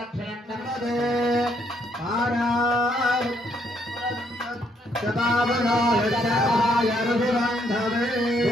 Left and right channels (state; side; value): normal; both; correlation 0.71